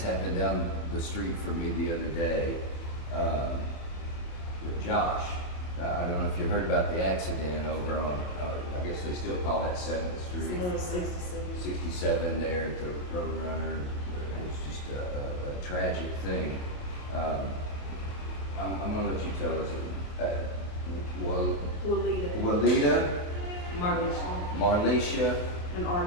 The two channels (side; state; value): right; late; 28 ms